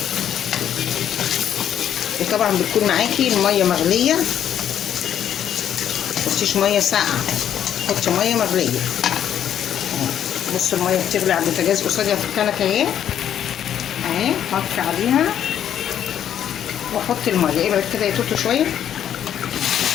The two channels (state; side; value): quieter; right; 9.9 dB